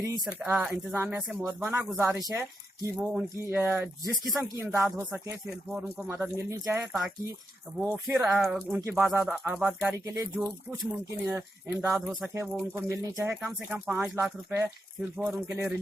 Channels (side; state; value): both; normal; correlation 0.85